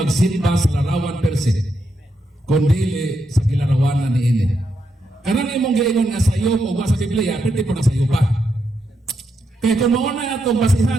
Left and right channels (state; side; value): normal; both; correlation 0.82